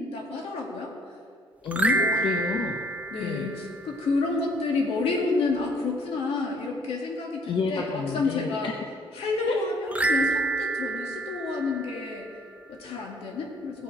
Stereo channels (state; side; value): normal; both; correlation 0.60